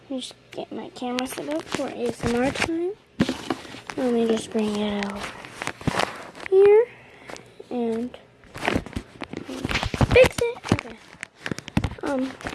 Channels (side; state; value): both; identical; correlation 1.00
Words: Let me just get my camera set up for ASMR time. Let me just bring it out here and fix it. Okay.